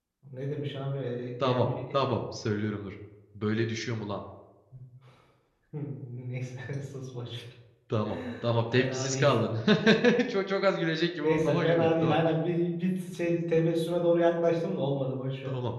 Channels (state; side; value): identical; both; correlation 1.00